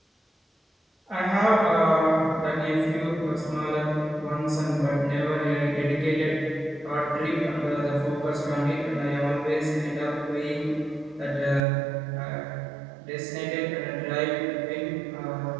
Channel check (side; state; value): left; drops out; at 11.7 s